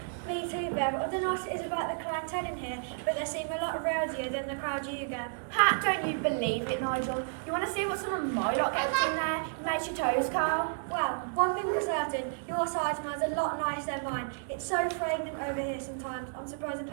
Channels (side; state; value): left; silent; digital silence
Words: Me too, Bev. I don't know what it is about the clientele in here, but they seem a lot rowdier than the crowd you get. Ha, don't you believe it, Nigel? You want to see what some of my lot gets in there? It makes your toes curl. Well, one thing for certain, your side smells a lot nicer than mine. It's so fragrant over here sometimes. I'm surprised the